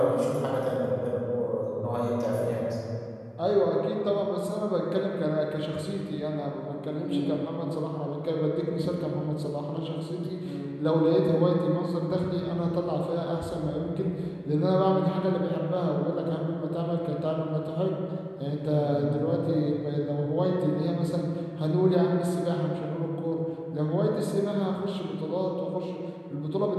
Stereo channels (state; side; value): identical; both; correlation 1.00